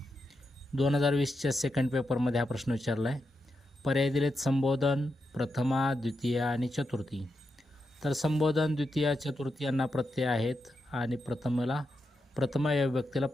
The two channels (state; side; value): normal; both; correlation 0.85